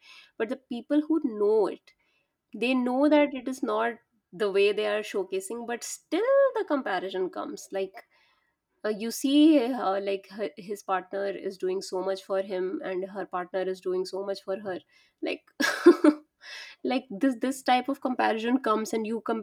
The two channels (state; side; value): identical; both; correlation 1.00